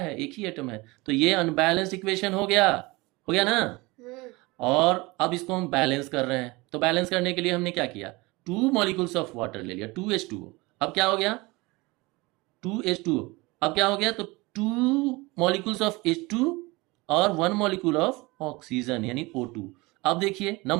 1 ही एटम है। तो ये अनबैलेंस्ड इक्वेशन हो गया ना। और अब इसको हम बैलेंस कर रहे हैं। तो बैलेंस करने के लिए हमने क्या किया, 2 मॉलिक्यूल्स ऑफ वाटर ले लिया, 2H2O। अब क्या हो गया, 2H2O। अब क्या हो गया, तो 2 मॉलिक्यूल्स ऑफ H2 और 1 मॉलिक्यूल ऑफ ऑक्सीजन यानी O2। अब देखिए,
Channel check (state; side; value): quieter; left; 23.4 dB